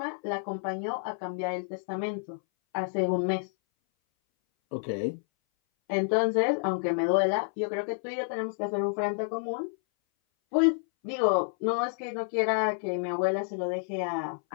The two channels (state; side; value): silent; right; 58 dB below the other